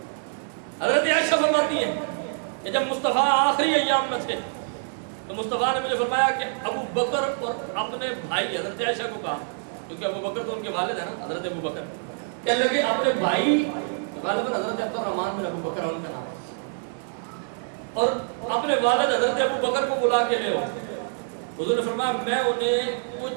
حضرت عائشہ فرماتی ہیں کہ جب مصطفیٰ آخری ایام میں تھے تو مصطفیٰ نے مجھے فرمایا کہ ابو بکر اور اپنے بھائی, حضرت عائشہ کو کہا کیونکہ ابو بکر تو ان کے والد ہیں نا, حضرت ابو بکر, کہنے لگے اپنے بھائی غالباً حضرت عبد الرحمن بن ابو بکر ان کا نام ہے, اور اپنے والد حضرت ابو بکر کو بلا کے لے آؤ. حضور نے فرمایا میں انہیں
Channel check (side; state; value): left; silent; digital silence